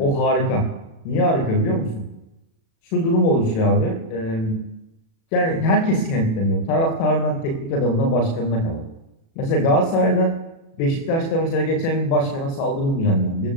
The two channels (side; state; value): right; late; 36 ms